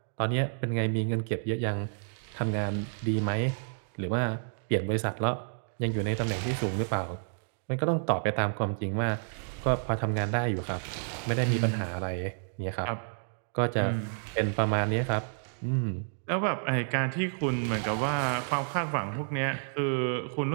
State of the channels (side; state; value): left; silent; digital silence